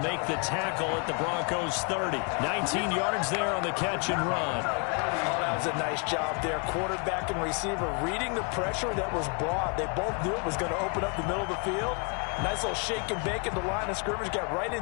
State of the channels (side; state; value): right; quieter; 36.1 dB